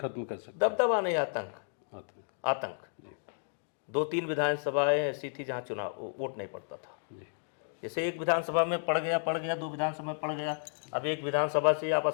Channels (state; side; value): silent; right; digital silence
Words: कर सकते। दबदबा नहीं, आतंक। 2-3 विधानसभाएं ऐसी थी जहां चुनाव वोट नहीं पड़ता था। जैसे एक विधानसभा में पड़ गया, 2 विधानसभा में पड़ गया। अब एक विधानसभा से आप